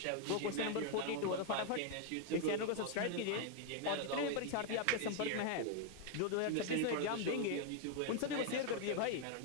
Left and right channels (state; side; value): different; both; correlation 0.00